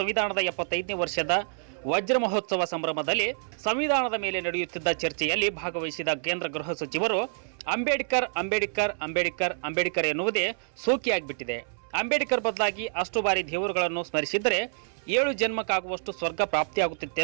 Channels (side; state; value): left; silent; 60 dB below the other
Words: 75ನೇ ವರ್ಷದ ವಜ್ರ ಮಹೋತ್ಸವ ಸಂಭ್ರಮದಲ್ಲಿ ಸಂವಿಧಾನದ ಮೇಲೆ ನಡೆಯುತ್ತಿದ್ದ ಚರ್ಚೆಯಲ್ಲಿ ಭಾಗವಹಿಸಿದ ಕೇಂದ್ರ ಗೃಹ ಸಚಿವರು ಅಂಬೇಡ್ಕರ್ ಅಂಬೇಡ್ಕರ್ ಅಂಬೇಡ್ಕರ್ ಅಂಬೇಡ್ಕರ್ ಎನ್ನುವುದೇ ಸೋಕಿಯಾಗಿಬಿಟ್ಟಿದೆ. ಅಂಬೇಡ್ಕರ್ ಬದಲಾಗಿ ಅಷ್ಟು ಬಾರಿ ದೇವರುಗಳನ್ನು ಸ್ಮರಿಸಿದರೆ 7 ಜನ್ಮಕ್ಕಾಗುವಷ್ಟು ಸ್ವರ್ಗ